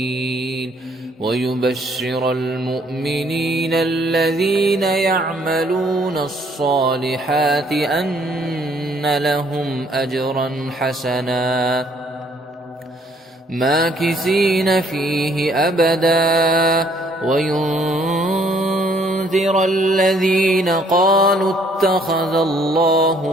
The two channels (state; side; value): normal; both; correlation 0.64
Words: ويبشر المؤمنين الذين يعملون الصالحات أن لهم أجرا حسنا ماكثين فيه أبدا وينذر الذين قالوا اتخذ الله